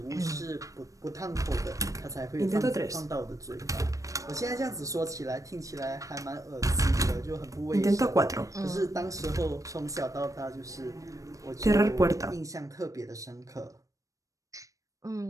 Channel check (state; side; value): late; left; 0.16 ms